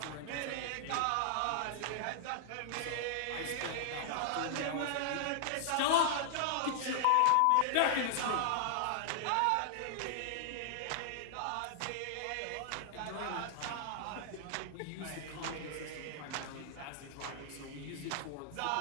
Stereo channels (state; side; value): different; both; correlation -0.01